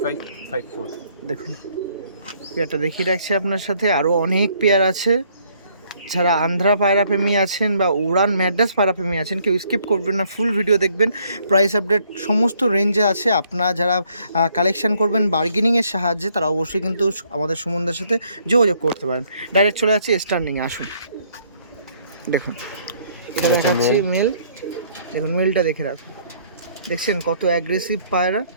দেখুন পেয়ারটা দেখিয়ে রাখছি আপনার সাথে। আরও অনেক পেয়ার আছে। যারা আন্ধ্রা পায়রা প্রেমী আছেন বা উড়ান ম্যাড্রাস পায়রা প্রেমী আছেন কেউ স্কিপ করবেন না, ফুল ভিডিও দেখবেন। প্রাইস আপডেট সমস্ত রেঞ্জে আছে। আপনারা যারা কালেকশন করবেন বার্গেনিংয়ের সাহায্যে তারা অবশ্যই কিন্তু আমাদের সুমনদার সাথে যোগাযোগ করতে পারেন। ডাইরেক্ট চলে যাচ্ছি স্ট্যান্ডিংয়ে, আসুন। দেখুন এটা দেখাচ্ছি মেল, দেখুন মেলটা দেখে রাখুন, দেখছেন কত অ্যাগ্রেসিভ পায়রা।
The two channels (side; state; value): both; inverted; correlation -0.65